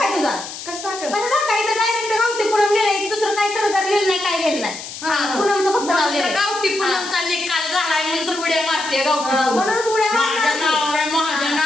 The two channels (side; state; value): left; noise; hiss, 11 dB below the sound